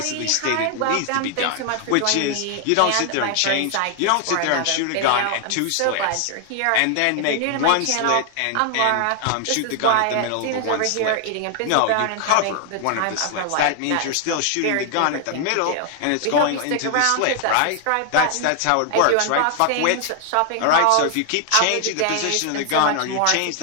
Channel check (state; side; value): different; both; correlation 0.00